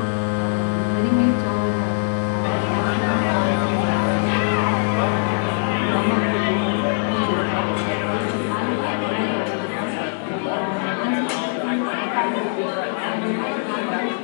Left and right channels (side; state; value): right; silent; 64 dB below the other